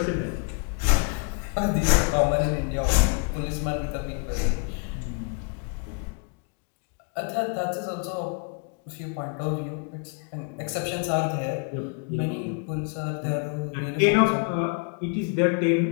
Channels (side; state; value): right; quieter; 35.4 dB